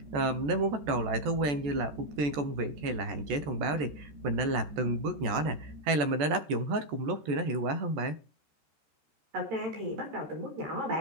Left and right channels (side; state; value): left; late; 14 ms